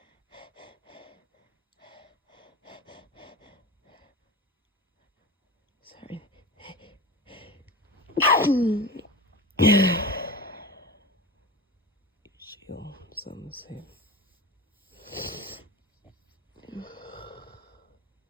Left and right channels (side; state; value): both; normal; correlation 0.29